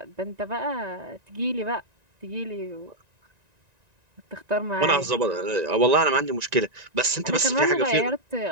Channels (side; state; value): left; late; 1.9 ms